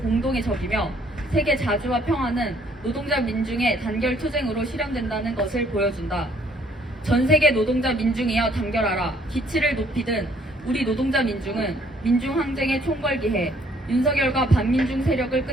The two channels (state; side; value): normal; both; correlation 0.63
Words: 적이며 세계 자주와 평화는 노동자 민중의 단결 투쟁으로 실현된다는 것을 보여준다. 전 세계 노동자 민중이여 단결하라. 기치를 높이든 우리 노동자 민중은 민중항쟁에 총궐기해 윤석열과 반민중 세력을